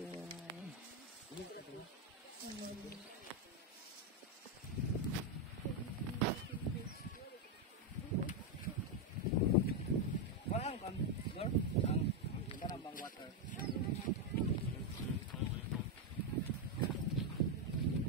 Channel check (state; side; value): normal; both; correlation 0.04